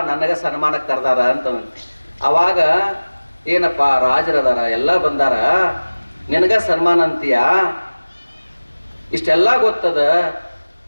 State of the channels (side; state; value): both; inverted; correlation -1.00